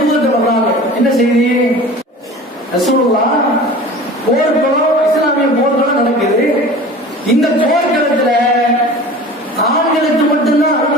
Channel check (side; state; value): both; normal; correlation 0.40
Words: தூதர் வர்றாங்க. என்ன செய்தி? ரசூலுல்லாஹ் போர்க்களம், இஸ்லாமிய போர்க்களம் நடக்குது. இந்த போர்க்களத்துல ஆண்களுக்கு மட்டும்தான்